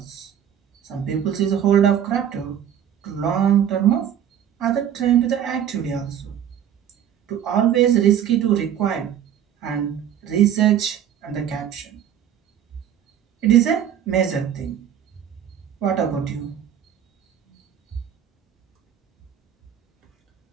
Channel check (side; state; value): left; quieter; 9.7 dB